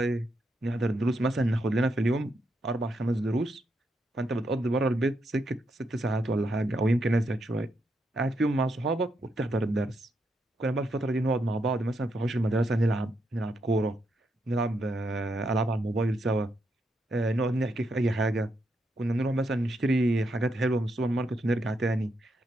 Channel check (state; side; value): normal; both; correlation 0.80